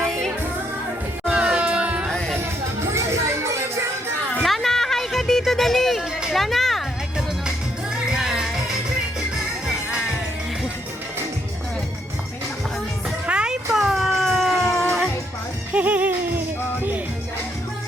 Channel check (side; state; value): both; normal; correlation 0.73